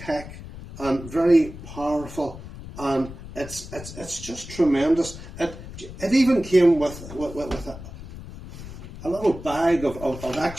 and very powerful, and it's just tremendous. It even came with a little bag of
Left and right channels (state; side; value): noise; left; rumble, 13 dB below the sound